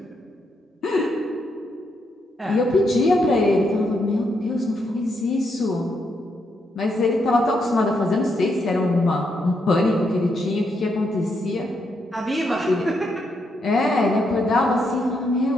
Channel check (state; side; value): normal; both; correlation 0.79